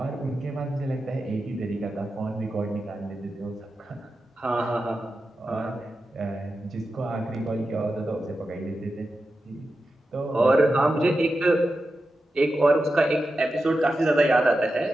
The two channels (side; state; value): both; normal; correlation 0.91